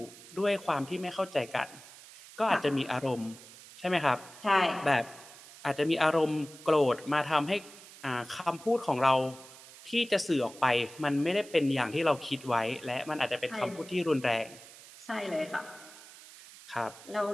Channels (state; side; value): noise; right; hiss, 19 dB below the sound